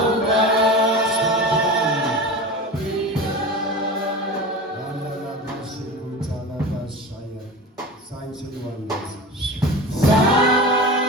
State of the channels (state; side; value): normal; both; correlation 0.31